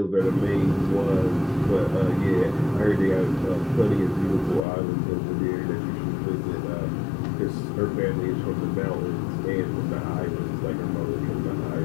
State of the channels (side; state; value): right; drops out; at 4.7 s